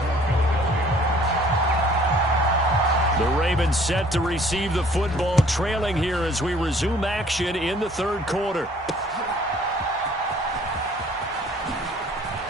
The Ravens set to receive the football, trailing here as we resume action in the 3rd quarter.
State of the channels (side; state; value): left; noise; hum, 26 dB below the sound